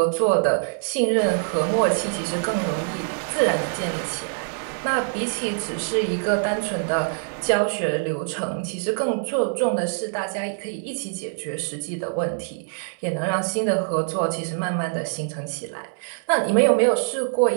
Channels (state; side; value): silent; left; digital silence